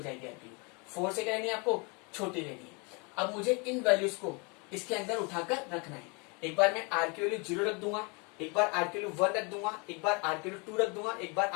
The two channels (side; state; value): right; quieter; 31.3 dB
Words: आपकी 4 से क्या लेनी है, आपको छोटी लेनी है। अब मुझे इन वैल्यूज को इसके अंदर उठाकर रखना है। एक बार मैं R की वैल्यू 0 रख दूंगा, एक बार R की वैल्यू 1 रख दूंगा, एक बार R की वैल्यू 2 रख दूंगा, एक बार